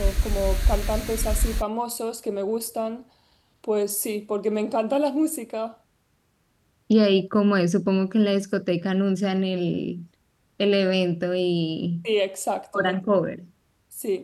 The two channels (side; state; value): both; identical; correlation 1.00